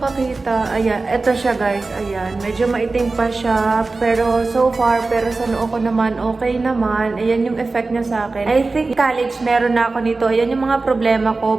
Ayan, eto siya guys. Ayan, medyo maitim pa siya. Pero so far, pero sa noo ko naman, okay naman. Ayan yung effect niya sa akin. I think college meron na ako nito. Ayan yung mga problema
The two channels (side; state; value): left; quieter; 3.6 dB